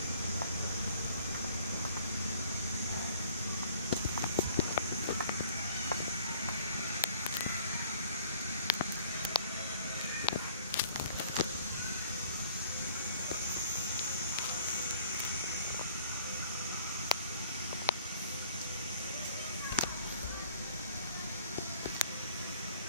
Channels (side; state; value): both; inverted; correlation -0.54